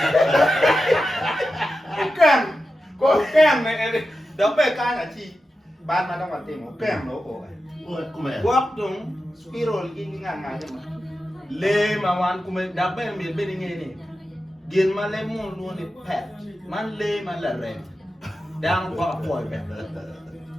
có kem này đó về cái là chi ban mà đang còn tìm một kem nữa cổ quốc đúng spiral cái ngang ngang chứ mà lê mà hoàn cũng mình đáp bên miền bên nghe này điền mà lê mua luôn thì pet man lê mà là rèm đang qua khỏi pet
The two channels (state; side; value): normal; both; correlation 0.91